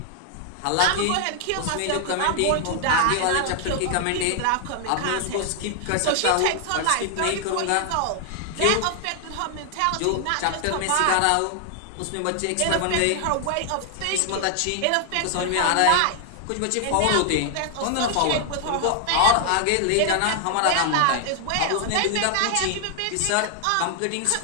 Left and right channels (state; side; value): different; both; correlation 0.00